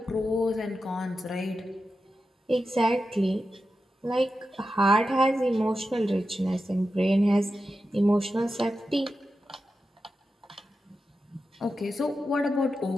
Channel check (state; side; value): normal; both; correlation 0.90